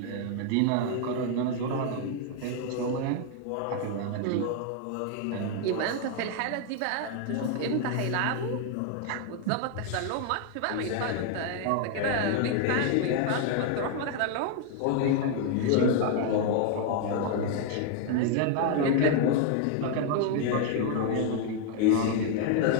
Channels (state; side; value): different; both; correlation 0.00